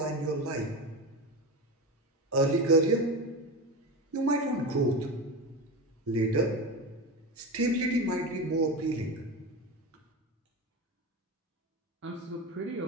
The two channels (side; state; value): both; normal; correlation 0.22